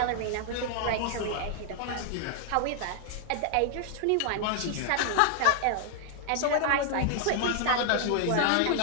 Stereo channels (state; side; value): different; both; correlation 0.00